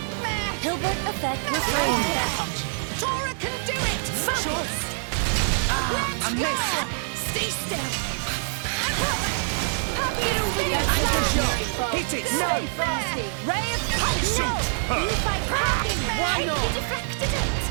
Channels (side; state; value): left; silent; digital silence